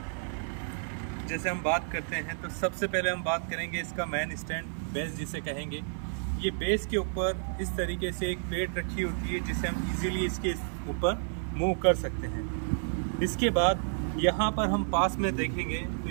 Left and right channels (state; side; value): silent; left; digital silence